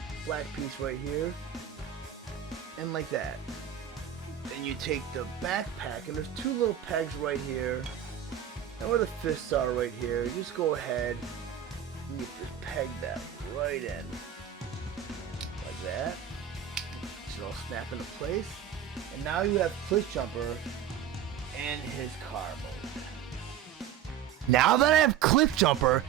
black piece right here, and like that. Then you take the backpack, and there's two little pegs right here, and where the fists are right here, you just go ahead and you just peg that right in, like that. It should all snap into place, and now you have Cliffjumper in his car mode. Now that I have Cliffjumper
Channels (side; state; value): left; quieter; 9.5 dB